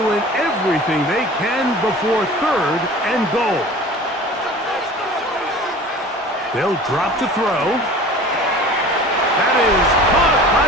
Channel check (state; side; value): normal; both; correlation 0.41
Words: everything they can before 3rd and goal. They'll drop to throw. That is caught by